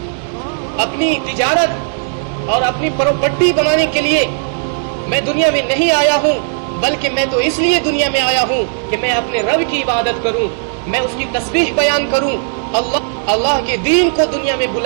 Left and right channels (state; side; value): silent; left; digital silence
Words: اپنی تجارت اور اپنی پراپرٹی بنانے کے لیے میں دنیا میں نہیں آیا ہوں، بلکہ میں تو اس لیے دنیا میں آیا ہوں کہ میں اپنے رب کی عبادت کروں، میں اس کی تسبیح بیان کروں، اللہ کے دین کو دنیا میں